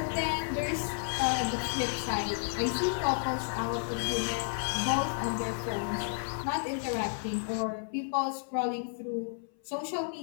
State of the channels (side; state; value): right; silent; 56 dB below the other